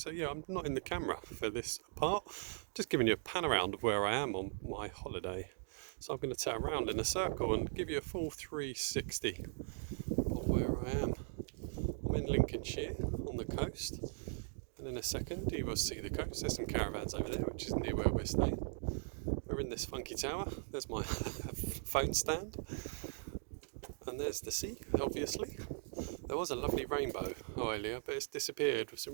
yeah, I'm not in the camera for this part, just giving you a pan around of where I am on my holiday. So I'm going to turn around in a circle and give you a full 360 of where I am. I'm in Lincolnshire on the coast, and in a second you will see the coast. There's some caravans over there, which is near where we're staying. We're in this funky tower. There's my phone stand, and there's the sea, obviously. There was a lovely rainbow earlier, but it's disappeared with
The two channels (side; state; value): left; silent; digital silence